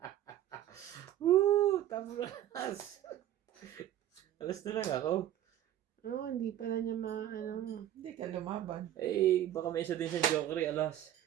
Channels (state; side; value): quieter; left; 12.2 dB